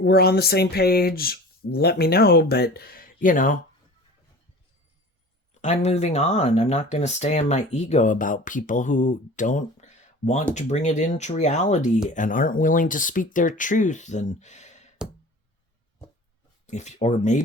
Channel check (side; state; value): both; normal; correlation 0.40